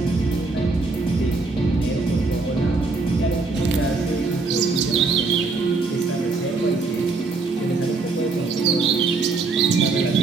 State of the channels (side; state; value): left; quieter; 3.9 dB